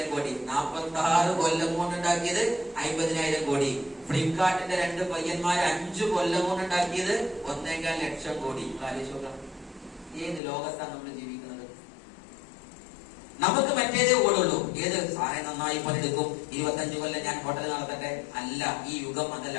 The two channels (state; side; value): drops out; right; at 10.4 s